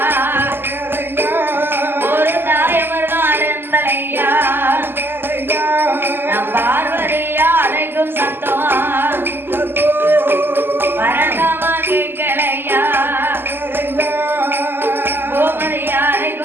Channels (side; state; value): left; late; 0.10 ms